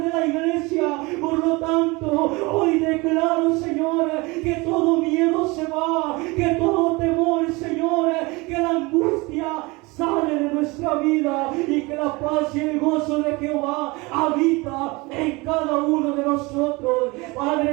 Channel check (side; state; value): left; quieter; 24.7 dB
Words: de la iglesia. Por lo tanto, hoy declaro, Señor, que todo miedo se va, que todo temor, Señor, que la angustia sale de nuestra vida y que la paz y el gozo de Jehová habita en cada uno de nosotros.